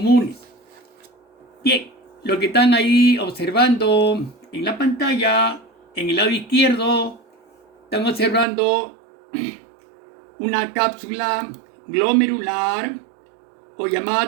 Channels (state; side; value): drops out; left; at 8.5 s